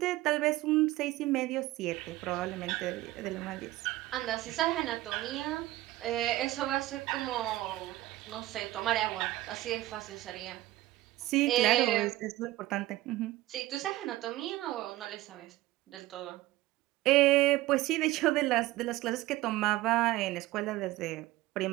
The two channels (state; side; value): quieter; left; 16.9 dB